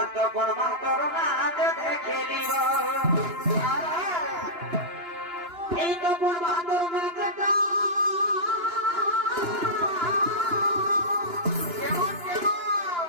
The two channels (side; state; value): left; late; 2.9 ms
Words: করবা তোর নাচে দেখে নিব এই তো করবা তোর নাচটা